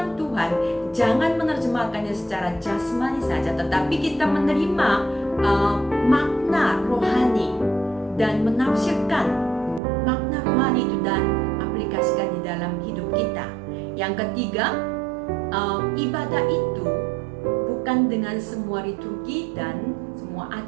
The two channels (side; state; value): left; drops out; at 9.8 s